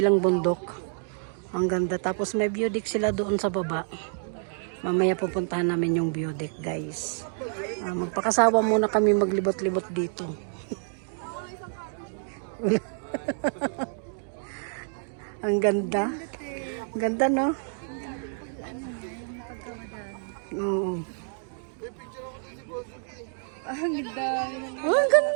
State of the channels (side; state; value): left; silent; 59 dB below the other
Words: bundok. Ang ganda. Tapos may view deck sila doon sa baba. Mamaya pupuntahan namin yung view deck guys. Magpakasawa muna kami maglibot-libot dito. Ang ganda. Ganda, no? Oo. Ang ganda. Ang